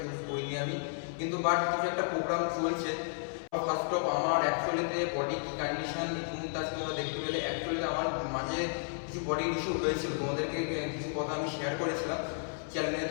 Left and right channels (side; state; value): right; silent; 56 dB below the other